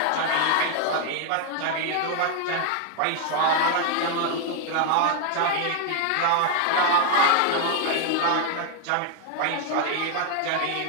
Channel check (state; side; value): different; both; correlation 0.00